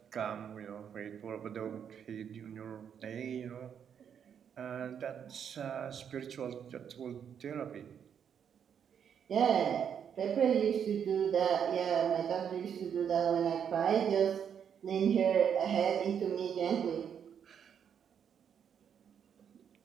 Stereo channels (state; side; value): quieter; left; 8.1 dB